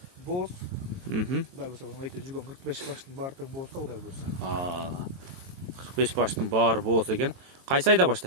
боз. Кудай буйрса айта жүргөн 45 баштын баары тең болсо Кудай буйрса. 45 баштын баары болсо экен. Кайсы айда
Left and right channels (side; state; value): left; late; 23 ms